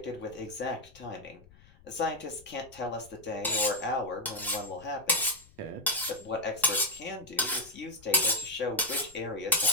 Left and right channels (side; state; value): left; noise; rumble, 25 dB below the sound